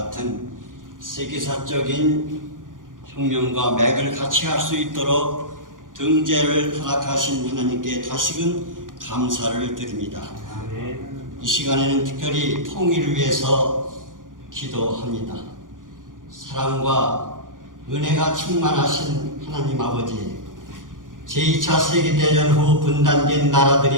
세계사적인 혁명과 맥을 같이 할 수 있도록 등재를 허락하신 하나님께 다시금 감사를 드립니다. 이 시간에는 특별히 통일을 위해서 기도합니다. 사랑과 은혜가 충만하신 하나님 아버지, 제2차 세계대전 후 분단된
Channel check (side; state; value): left; late; 0.89 ms